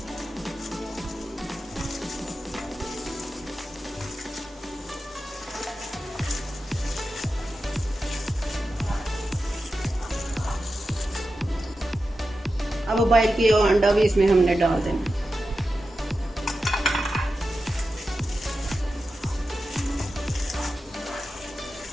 अब बॉयल किया हुआ अंडा भी इसमें हमने डाल देना।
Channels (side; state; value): both; normal; correlation 0.91